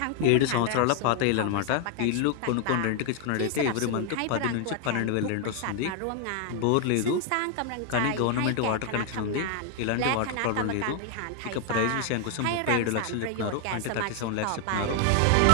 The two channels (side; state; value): both; different; correlation 0.00